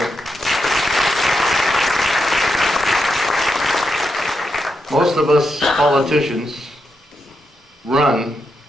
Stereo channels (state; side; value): normal; both; correlation 0.84